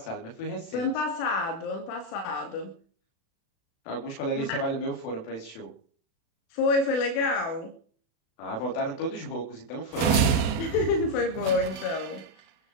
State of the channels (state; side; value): late; right; 36 ms